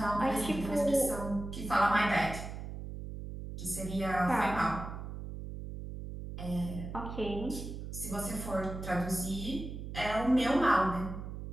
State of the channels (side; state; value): right; noise; hum, 8 dB below the sound